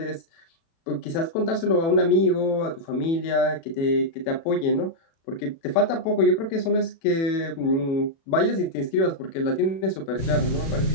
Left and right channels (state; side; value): late; right; 36 ms